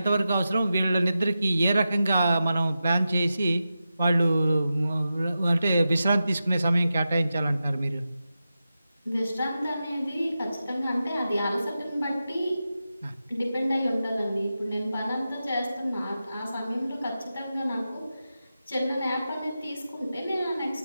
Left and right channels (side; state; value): both; inverted; correlation -0.91